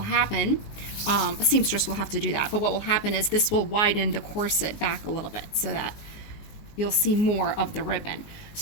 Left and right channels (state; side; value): late; right; 19 ms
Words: a seamstress will have to do that, but what will happen is this will widen the corset back a little bit so that you'll see more of the ribbon.